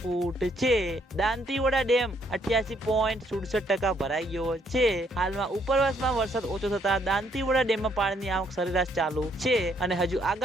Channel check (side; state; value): both; normal; correlation 0.70